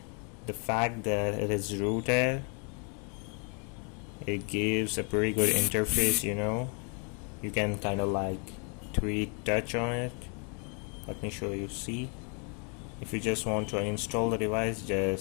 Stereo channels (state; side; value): quieter; right; 37.3 dB